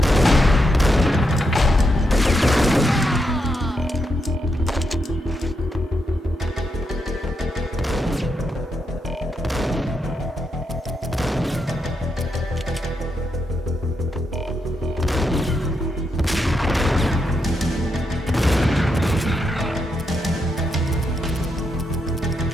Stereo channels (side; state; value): both; normal; correlation 0.82